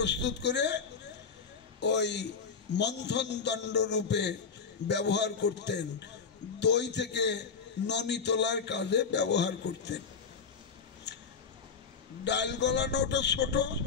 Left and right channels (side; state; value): right; quieter; 5.6 dB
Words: করে ওই মন্থন দণ্ড রূপে ব্যবহার করতেন। দই থেকে ননি তোলার কাজে ব্যবহার করতেন। ডাল গলানোটা ছোট